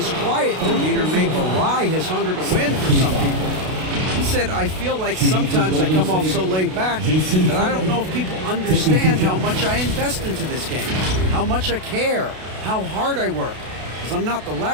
quiet demeanor may belie his hunger to win for some people. He said, I feel like sometimes I come off so laid back that I don't know if people understand how much I invest into this game, how much I care, how hard I work, because I'm not the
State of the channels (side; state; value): left; late; 32 ms